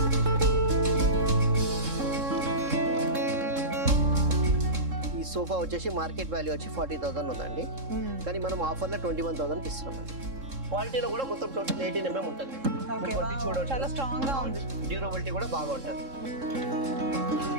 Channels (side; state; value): left; late; 3.7 ms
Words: ఈ సోఫా వచ్చేసి మార్కెట్ వాల్యూ వచ్చి 40,000 ఉందండి, కానీ మనం ఆఫర్లో 21,000కి ఇస్తున్నాం. క్వాలిటీలో కూడా మొత్తం టోటల్ 18 mm ఉంటుంది. చాలా స్ట్రాంగ్ గా ఉంది, డ్యూరబిలిటీ కూడా బాగా ఉంటుంది.